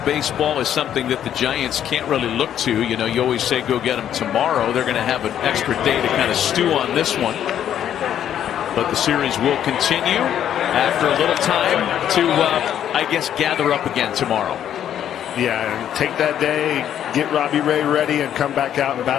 baseball is something that the Giants can't really look to. You know, you always say go get them tomorrow. They're going to have an extra day to kind of stew on this one. But the series will continue after a little time to, I guess, gather up again tomorrow. Yeah, and take that day, get Robbie Ray ready, and come back out and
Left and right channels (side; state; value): right; quieter; 10.1 dB